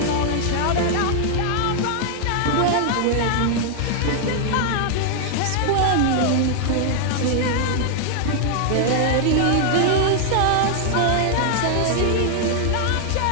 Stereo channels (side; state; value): both; different; correlation 0.00